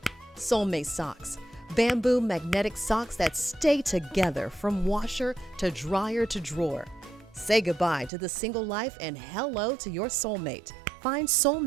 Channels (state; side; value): drops out; left; at 8.1 s